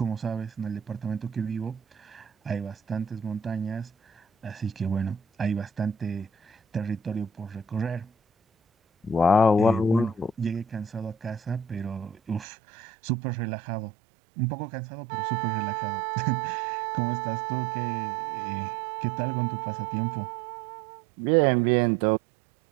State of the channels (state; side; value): drops out; left; at 12.5 s